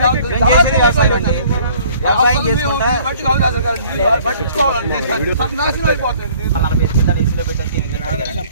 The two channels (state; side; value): inverted; both; correlation -0.55